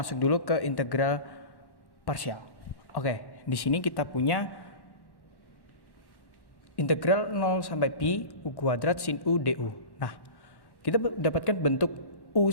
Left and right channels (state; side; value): late; right; 1.1 ms